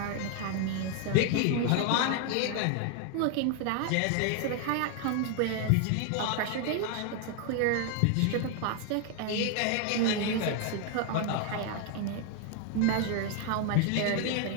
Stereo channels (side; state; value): both; different; correlation 0.00